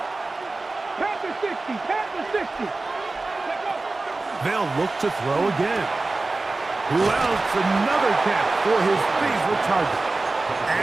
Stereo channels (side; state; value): left; quieter; 3.3 dB